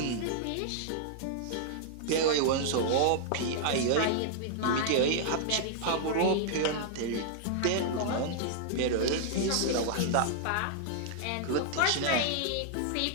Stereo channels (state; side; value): different; both; correlation -0.01